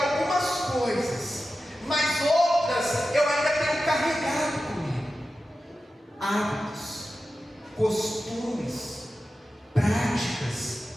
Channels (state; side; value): normal; both; correlation 0.93